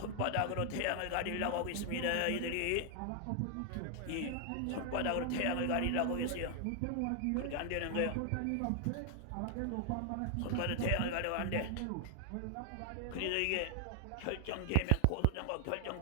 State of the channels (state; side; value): different; both; correlation 0.00